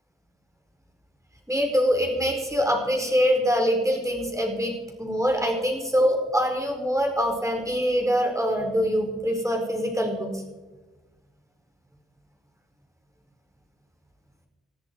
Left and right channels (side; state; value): both; normal; correlation 0.74